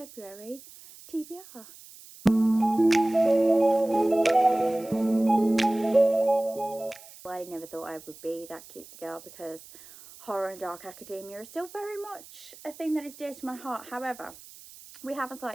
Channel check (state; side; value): noise; right; hiss, 20 dB below the sound